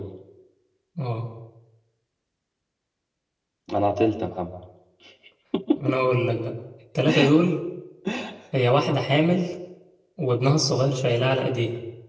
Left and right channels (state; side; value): identical; both; correlation 1.00